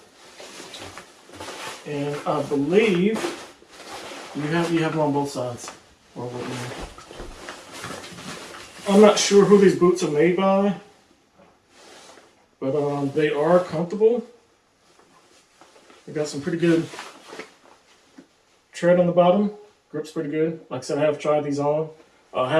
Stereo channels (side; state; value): both; identical; correlation 1.00